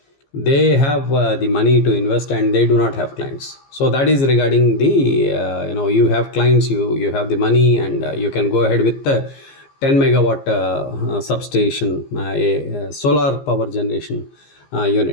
They have the money to invest and they do not have clients. So that is regarding the you have clients, you have the money, and you can go ahead with the 10 megawatt substation, a solar power generation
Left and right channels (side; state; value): right; late; 15 ms